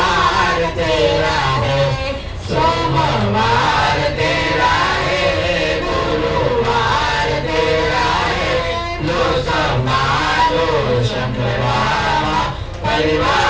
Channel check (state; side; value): identical; both; correlation 1.00